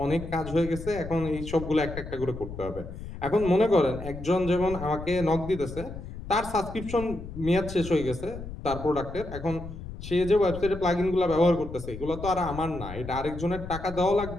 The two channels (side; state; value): left; noise; rumble, 11 dB below the sound